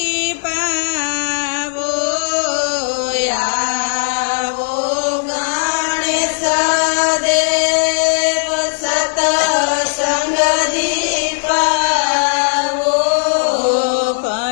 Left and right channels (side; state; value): right; silent; digital silence